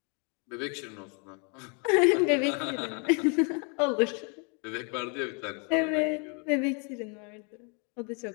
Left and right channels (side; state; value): right; quieter; 36.4 dB